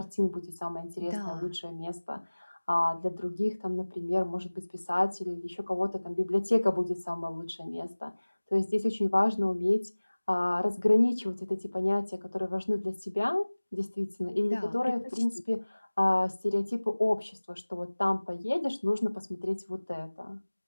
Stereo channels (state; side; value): inverted; both; correlation -1.00